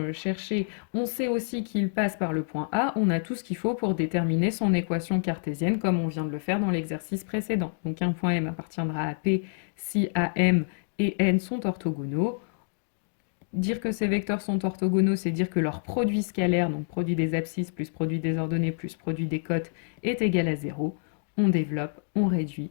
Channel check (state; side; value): silent; right; digital silence